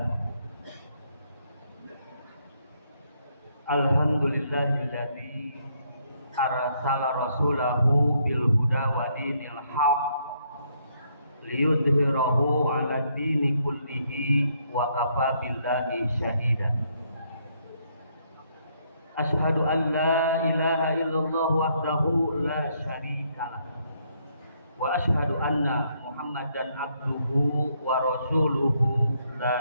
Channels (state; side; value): inverted; both; correlation -0.72